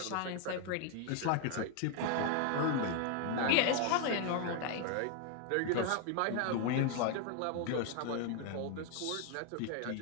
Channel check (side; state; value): both; different; correlation 0.00